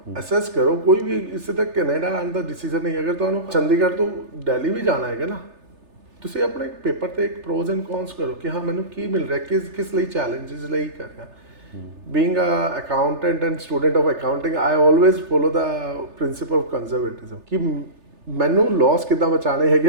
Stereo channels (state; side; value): late; left; 3.3 ms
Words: assess ਕਰੋ। ਕੋਈ ਵੀ ਇਸੇ ਤੱਕ ਕੈਨੇਡਾ ਆਉਣ ਦਾ ਡਿਸੀਜਨ ਨਹੀਂ। ਅਗਰ ਤੁਹਾਨੂੰ ਚੰਡੀਗੜ੍ਹ ਤੋਂ ਦਿੱਲੀ ਵੀ ਜਾਣਾ ਹੈਗਾ ਨਾ, ਤੁਸੀਂ ਆਪਣੇ ਪੇਪਰ ਤੇ ਇੱਕ ਪ੍ਰੋਜ਼ ਐਂਡ ਕੌਨਸ ਕਰੋ ਕਿ ਹਾਂ ਮੈਨੂੰ ਕੀ ਮਿਲ ਰਿਹਾ, ਕਿਸ ਲਈ ਚੈਲੰਜਸ ਲਈ ਕਰ ਰਿਹਾ। Being a accountant and student of accounting, I always follow the principle of conservatism ਕਿ ਮੈਨੂੰ ਲਾਸ ਕਿੱਦਾਂ ਬਚਾਣੇ